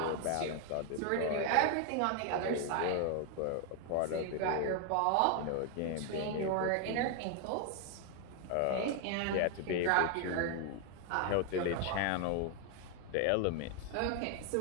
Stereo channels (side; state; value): both; different; correlation 0.01